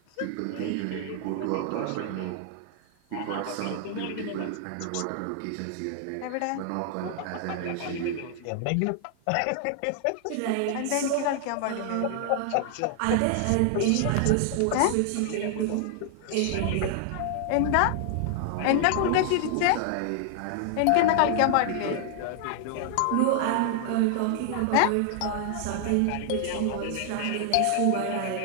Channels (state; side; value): different; both; correlation 0.00